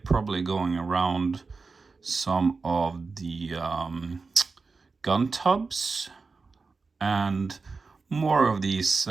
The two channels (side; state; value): left; quieter; 4.3 dB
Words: going around some of the gun tubs, and more of these